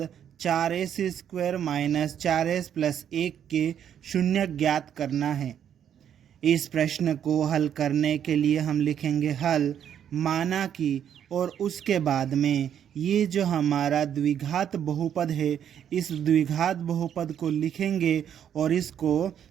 4s² माइनस 4s प्लस 1 के शून्यक ज्ञात करना है। इस प्रश्न को हल करने के लिए हम लिखेंगे हल, माना कि, और उसके बाद में ये जो हमारा द्विघात बहुपद है इस द्विघात बहुपद को लिखेंगे और इसको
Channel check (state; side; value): quieter; left; 9.2 dB